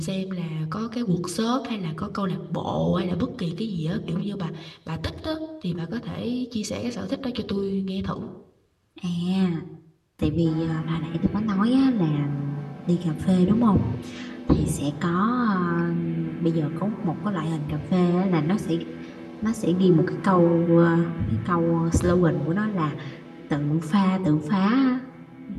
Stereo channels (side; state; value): both; identical; correlation 1.00